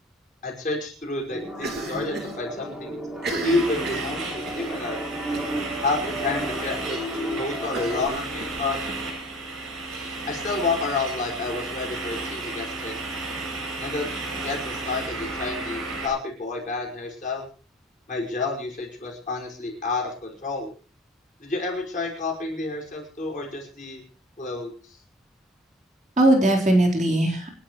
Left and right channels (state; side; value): normal; both; correlation 0.45